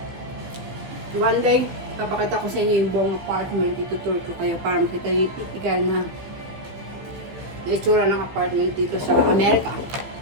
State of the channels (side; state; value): left; late; 15 ms